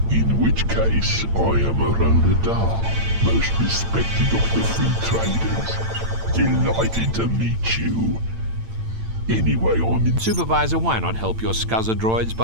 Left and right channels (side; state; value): left; late; 8.9 ms